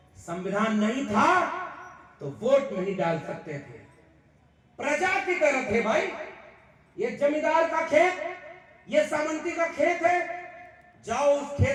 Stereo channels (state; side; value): identical; both; correlation 1.00